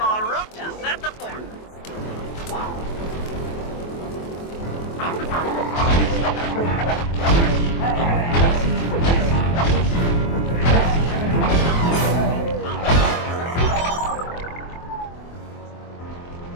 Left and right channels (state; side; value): late; right; 24 ms